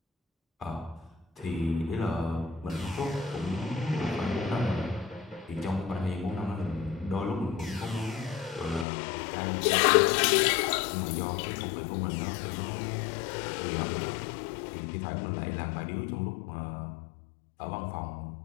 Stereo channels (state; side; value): drops out; right; at 8.8 s